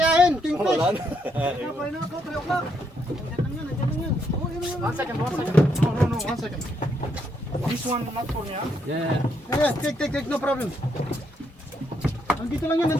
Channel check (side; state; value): both; normal; correlation 0.76